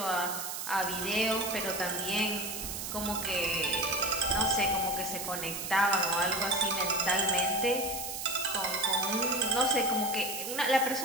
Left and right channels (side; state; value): right; noise; hiss, 5 dB below the sound